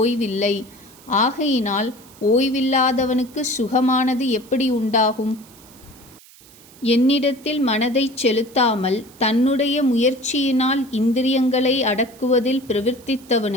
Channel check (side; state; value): right; noise; hiss, 24 dB below the sound